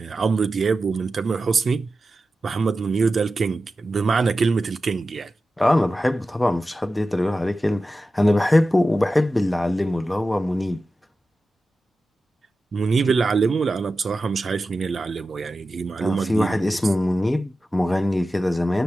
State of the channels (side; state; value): both; normal; correlation 0.93